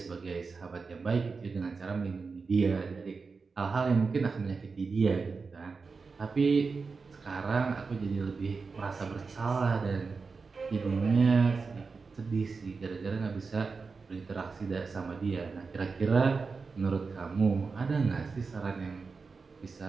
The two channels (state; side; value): quieter; left; 4.6 dB